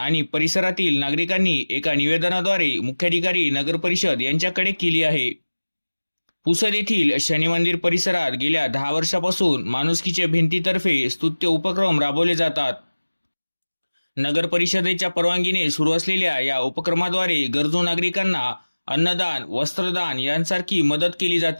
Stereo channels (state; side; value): inverted; both; correlation -1.00